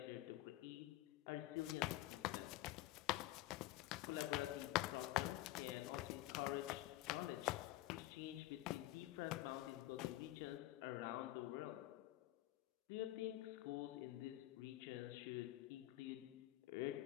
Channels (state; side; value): quieter; right; 16.8 dB